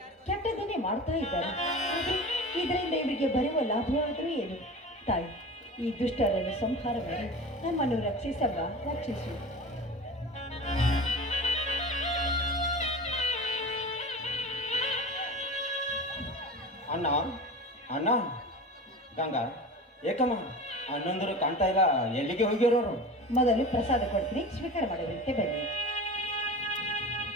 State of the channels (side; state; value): both; normal; correlation 0.33